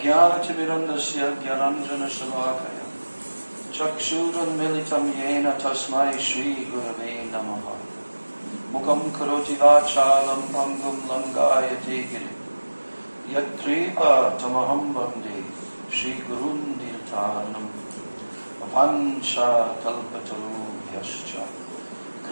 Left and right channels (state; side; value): inverted; both; correlation -1.00